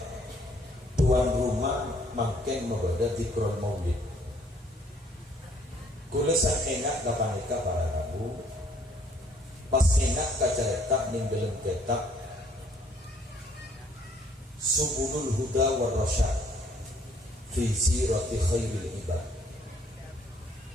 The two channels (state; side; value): normal; both; correlation 0.63